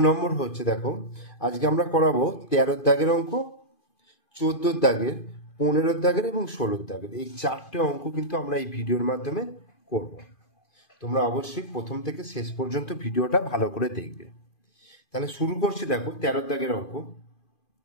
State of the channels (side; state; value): right; late; 2.5 ms